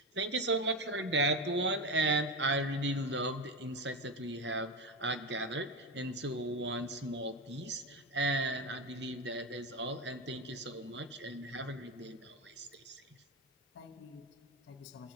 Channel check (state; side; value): normal; both; correlation 0.17